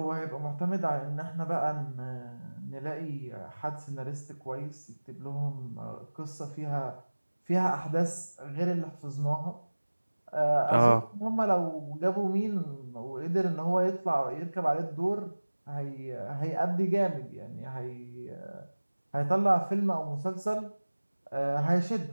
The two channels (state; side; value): inverted; both; correlation -1.00